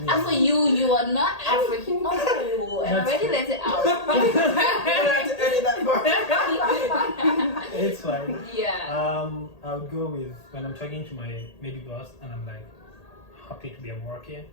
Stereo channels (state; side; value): late; right; 1.8 ms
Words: for you are not African. Oh, I That's already true. let it out. You don't have to edit that part. It's fine. Yeah. I would go with when I'm talking to my maybe boss and I'm like happy to be at work here.